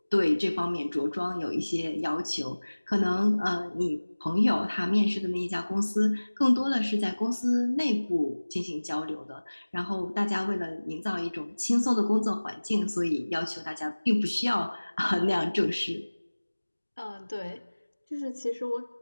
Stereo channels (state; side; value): inverted; both; correlation -1.00